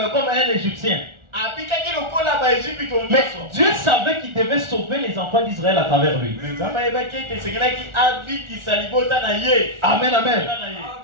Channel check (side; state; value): left; late; 1.4 ms